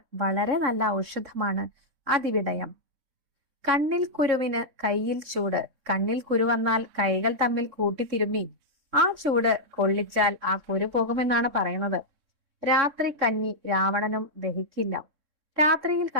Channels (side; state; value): left; late; 3.6 ms